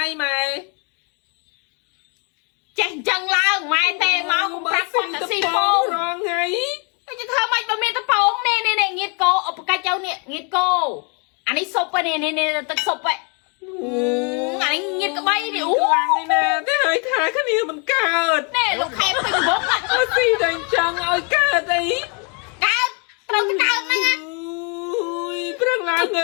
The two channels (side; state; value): right; quieter; 35.3 dB